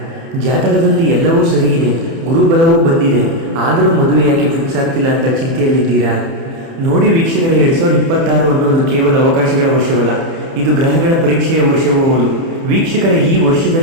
ಜಾತಕದಲ್ಲಿ ಎಲ್ಲವೂ ಸರಿ ಇದೆ, ಗುರುಬಲವೂ ಬಂದಿದೆ, ಆದರೂ ಮದುವೆ ಯಾಕೆ ಫಿಕ್ಸ್ ಆಗ್ತಿಲ್ಲ ಅಂತ ಚಿಂತೆಯಲ್ಲಿದ್ದೀರಾ? ನೋಡಿ ವೀಕ್ಷಕರೇ, 2026 ಅನ್ನೋದು ಕೇವಲ ಅವಕಾಶಗಳ ವರ್ಷವಲ್ಲ, ಇದು ಗ್ರಹಗಳ ಪರೀಕ್ಷೆಯ ವರ್ಷವೂ ಹೌದು. ವೀಕ್ಷಕರೇ, ಈ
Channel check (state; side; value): late; left; 30 ms